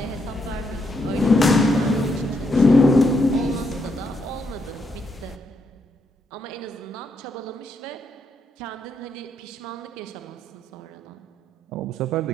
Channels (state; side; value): normal; both; correlation 0.78